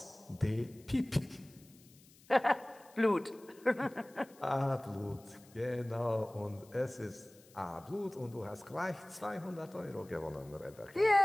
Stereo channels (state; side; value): noise; left; hiss, 26 dB below the sound